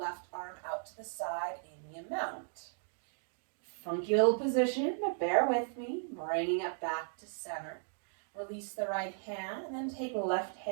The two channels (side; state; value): left; silent; digital silence